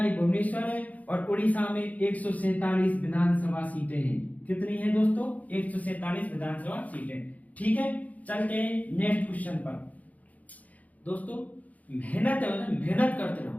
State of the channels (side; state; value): right; late; 0.074 ms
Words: भुवनेश्वर है। और उड़ीसा में 147 विधानसभा सीटें हैं। कितनी है दोस्तों? 147 विधानसभा सीटें, ठीक है। चलते हैं नेक्स्ट क्वेश्चन पर। दोस्तों, मेहनत है ना, मेहनत करते